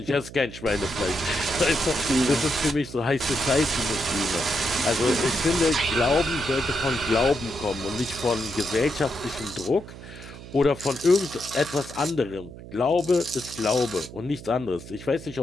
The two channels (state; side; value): noise; right; hum, 15 dB below the sound